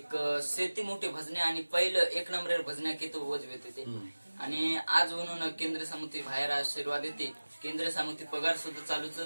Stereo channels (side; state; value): both; inverted; correlation -1.00